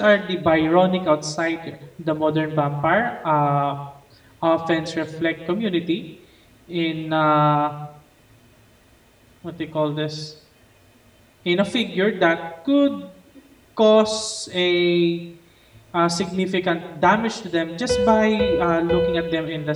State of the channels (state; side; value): identical; both; correlation 1.00